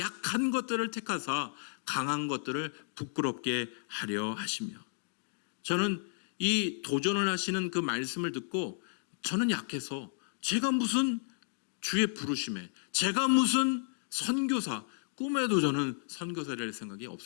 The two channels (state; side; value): silent; right; digital silence